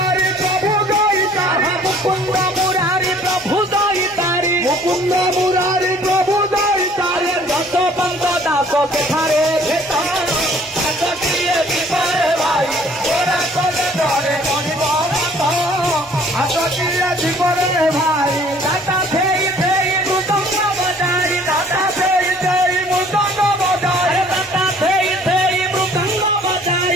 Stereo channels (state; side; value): normal; both; correlation 0.55